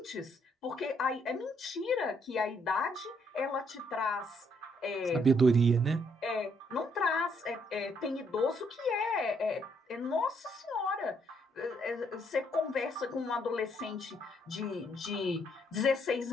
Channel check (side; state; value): both; normal; correlation 0.71